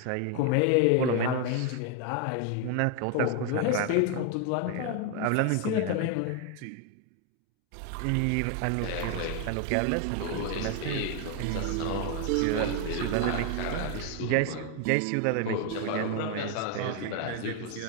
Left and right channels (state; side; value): different; both; correlation 0.01